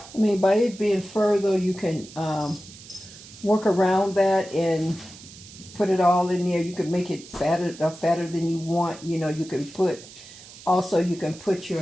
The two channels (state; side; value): noise; right; hiss, 18 dB below the sound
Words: I mean, by it being fur, though, you can work around that and put it all in there. You can make it fatter than you want. You know, you can put, also you can put